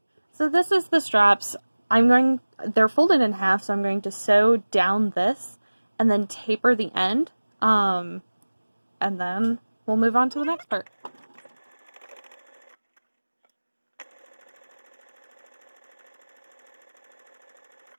So this is the straps. They're folded in half, so I'm going to sew down this and then taper the end, and then we'll move on to the next part.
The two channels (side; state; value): both; inverted; correlation -1.00